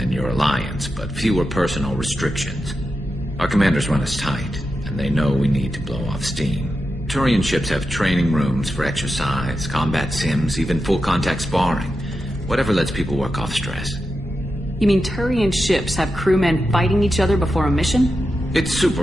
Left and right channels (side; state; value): both; normal; correlation 0.89